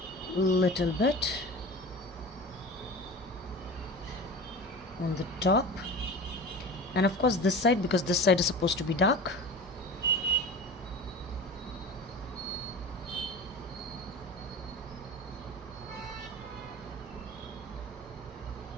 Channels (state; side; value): normal; both; correlation 0.34